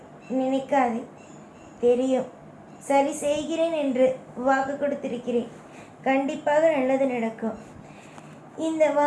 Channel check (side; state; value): both; identical; correlation 1.00